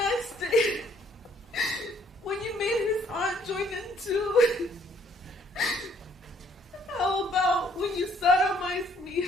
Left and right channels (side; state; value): both; normal; correlation 0.64